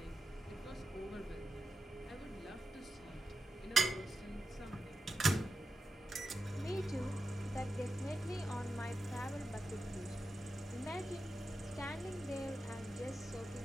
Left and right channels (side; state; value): both; normal; correlation 0.89